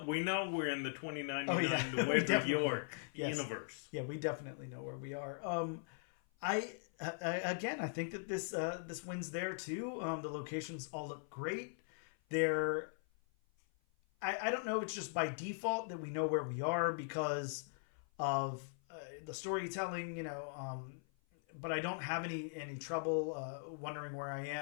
we're in the 2099 Nueva York universe. Yeah, we definitely know where we are. I think that this wins there too. The locations all look great. I don't know. It's just by default that we know where we are because of the storytelling. But I don't have any trouble wondering where I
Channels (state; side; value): silent; right; 51 dB below the other